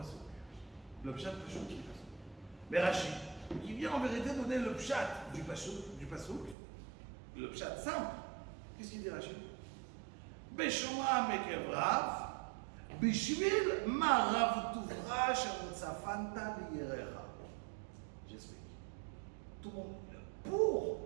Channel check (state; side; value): drops out; left; at 6.6 s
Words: Le pshat Passouk qui est Passouk. Mais Rachid, qui vient en vérité donner le pshat du Passouk, le pshat simple. Qu'est-ce qu'il dit Rachid? Beshomram Ekev Rav. Bishvil ma Rav Tuvra shemutzafanta liyerecha. J'explique. Tout le monde. Pour